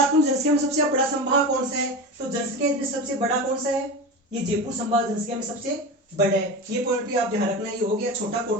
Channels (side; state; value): both; normal; correlation 0.25